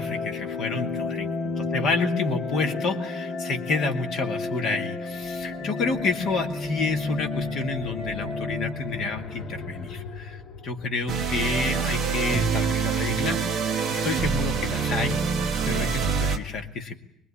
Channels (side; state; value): both; normal; correlation 0.52